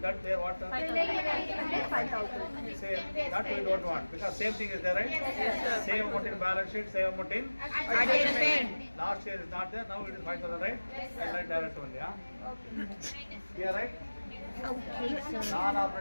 that there what? Preliminary expenses 5,000. Say that we don't want because same thing is there, right? Yes, sir. Same amount in balance sheet, same amount in Adjustment. last year is not there. Now it is 5,000, right? Yes, sir. I write direct only, huh? Here, right? Okay, sir.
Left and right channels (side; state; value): both; inverted; correlation -1.00